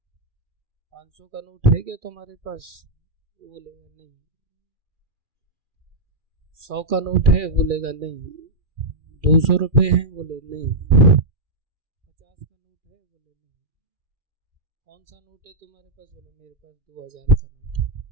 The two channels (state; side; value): late; left; 2.4 ms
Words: 500 का नोट है क्या तुम्हारे पास, बोलेगा नहीं। 100 का नोट है, बोलेगा नहीं। 200 रुपए हैं, बोले नहीं। 50 का नोट है, बोले नहीं। कौन सा नोट है तुम्हारे पास, बोले मेरे पास 2000 का नोट है।